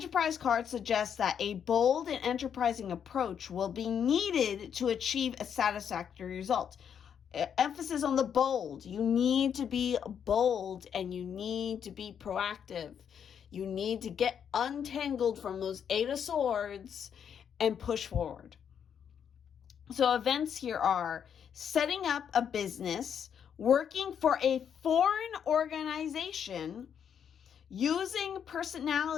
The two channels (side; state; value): right; quieter; 8.1 dB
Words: card suggests that a bold and enterprising approach will be needed to achieve a satisfactory result. Emphasis on the bold. You need to be bold and you need to be proactive. You need to get untangled from those Eight of Swords and push forward. So events here are setting up a business, working for a foreign organization, using